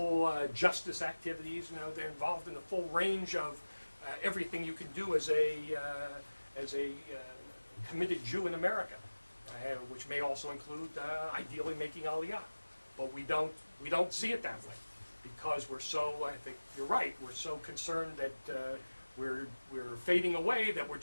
justice activities. They're involved in the full range of everything you can do as a committed Jew in America, which may also include ideally making Aliyah. But we don't see it that way because we're so. I think you're right. We're so concerned that we're fading away that we're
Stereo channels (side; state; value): both; inverted; correlation -1.00